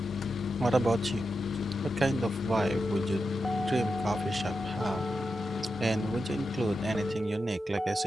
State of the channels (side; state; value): both; normal; correlation 0.89